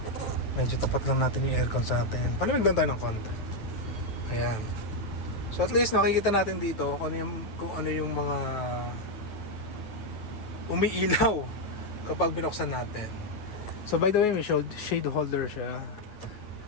Medyo tapat lang natin yung aircon sa atin. Palamig lang tayo ng konti. Ayan. So at least makikita natin dito kung ano yung mga umiilaw kapag binuksan natin. So by the way, may shade holder siya.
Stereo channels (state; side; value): late; right; 9.2 ms